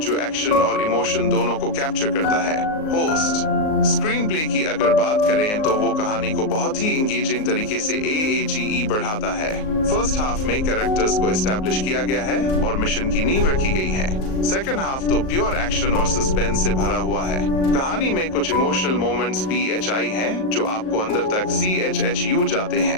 एक्शन और इमोशन दोनों को कैप्चर करता है। होस्ट। स्क्रीन प्ले की अगर बात करें तो वो कहानी को बहुत ही इंगेजिंग तरीके से AAGE बढ़ाता है। फर्स्ट हाफ में कैरेक्टर्स को एस्टैब्लिश किया गया है और मिशन की नींव रखी गई है। सेकंड हाफ तो प्योर एक्शन और सस्पेंस से भरा हुआ है। कहानी में कुछ इमोशनल मोमेंट्स BHI हैं जो आपको अंदर तक CHHU जाते हैं।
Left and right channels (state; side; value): late; right; 38 ms